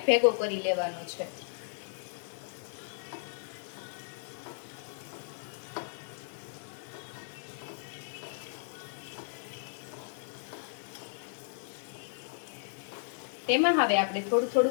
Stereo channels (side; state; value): right; silent; digital silence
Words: ભેગો કરી લેવાનો છે. તેમાં હવે આપણે થોડું